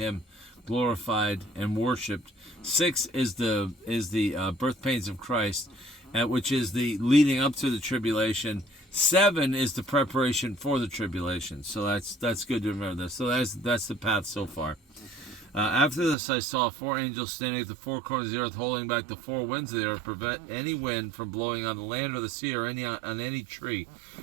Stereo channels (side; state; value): left; drops out; at 16.2 s